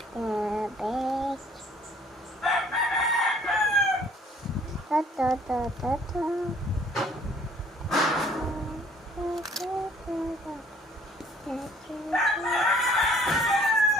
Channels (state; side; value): normal; both; correlation 0.57